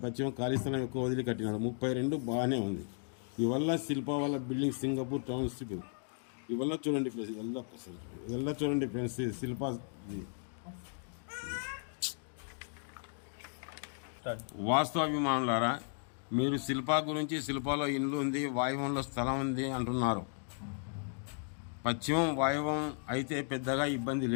పశ్చిమం ఖాళీ స్థలం ఎక్కువ వదిలి కట్టినాడు. 32 బాగానే ఉంది. ఇవల్ల శిల్పా వాళ్ళ బిల్డింగ్ సింగపూర్ టౌన్షిప్. ఇవల్ల చూడండి ఫ్రెండ్స్, ఇవల్ల చూడండి ఫ్రెండ్స్, శిల్పా వాస్తవాభిమానులారా, మీరు శిల్పా గురించి శిల్పాలో ఇండ్లు ఉంది, వాయువ్యంలో స్థలం ఉంది అంటున్నారు. పశ్చిమం వాయువ్యం అయితే పెద్దగా ఇబ్బంది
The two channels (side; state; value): right; silent; 54 dB below the other